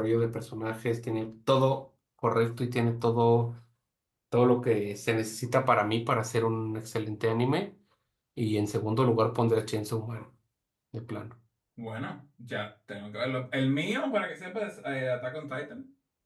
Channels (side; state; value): both; identical; correlation 1.00